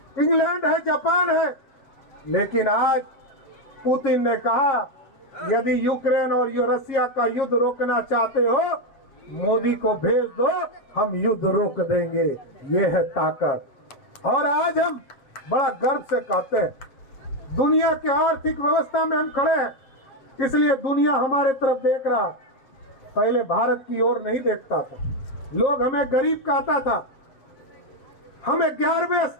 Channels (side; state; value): right; late; 7.4 ms